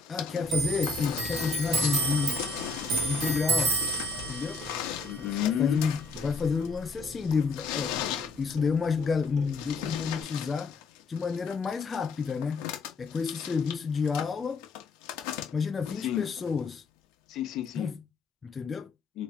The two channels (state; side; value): quieter; right; 3.8 dB